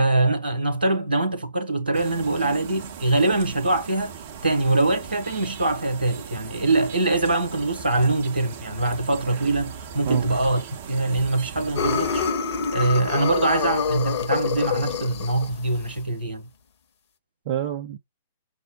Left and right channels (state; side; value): inverted; both; correlation -0.71